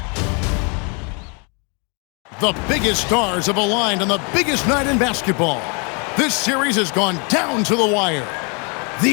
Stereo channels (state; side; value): quieter; right; 35.0 dB